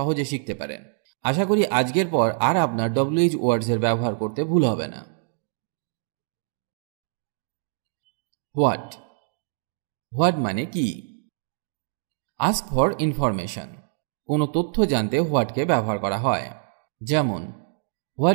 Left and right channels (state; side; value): silent; left; digital silence